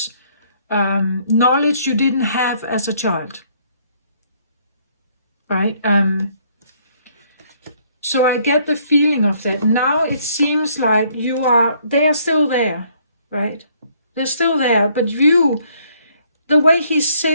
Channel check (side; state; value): both; inverted; correlation -0.65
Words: knowledge you didn't have as a child, right? So I get the feeling of that. Now it seems like they are still there, right? They're still there, but the way he